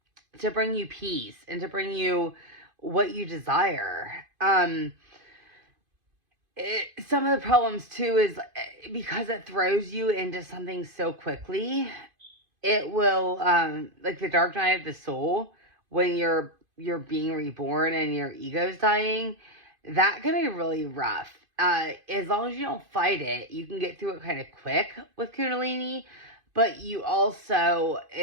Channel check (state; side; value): late; left; 2.5 ms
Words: bring you peace and to bring you what you desire. Some of the problems too is because it throws you into something so quickly. It will, like the dark night of the soul, when you're being reborn and your ego's dying, that can be really rough. As long as you don't fight it, you can get through it kind of quick with Kundalini. But